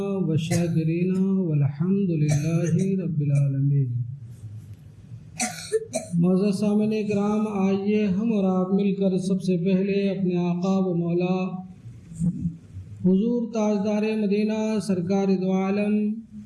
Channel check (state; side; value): identical; both; correlation 1.00